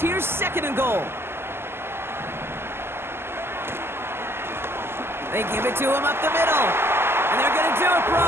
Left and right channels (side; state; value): left; late; 0.12 ms